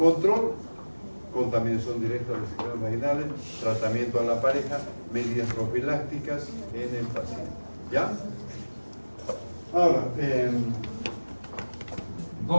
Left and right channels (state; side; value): inverted; both; correlation -1.00